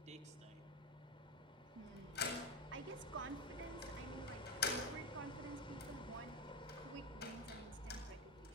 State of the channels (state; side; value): normal; both; correlation 0.15